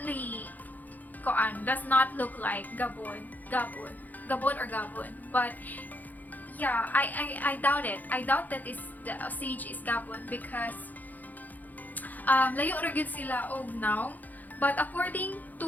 does not look like gabon or gabon. But yeah, I doubt it. I doubt that the sage is gabon because layo ra gyud sila og now. But according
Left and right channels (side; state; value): right; late; 0.082 ms